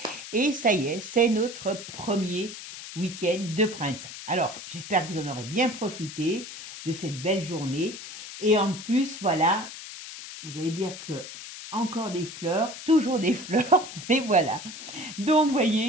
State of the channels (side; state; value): left; noise; hiss, 12 dB below the sound